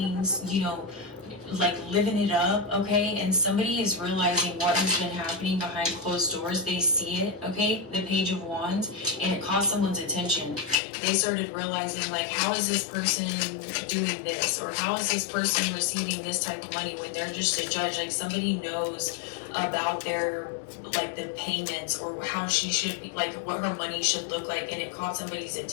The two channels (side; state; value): right; drops out; at 10.8 s